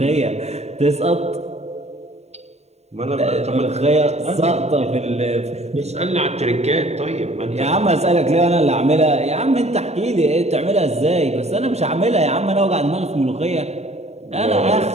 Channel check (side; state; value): left; late; 0.32 ms